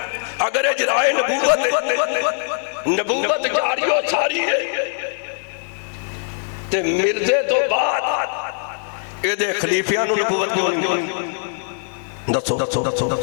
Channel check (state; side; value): silent; right; 58 dB below the other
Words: اگر اجرائے نبوت جاری و ساری ہے تے مرزے تو بعد یہ دے خلیفیاں نو نبوت کیوں دسو